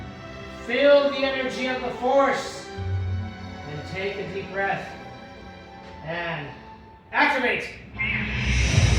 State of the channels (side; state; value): both; identical; correlation 1.00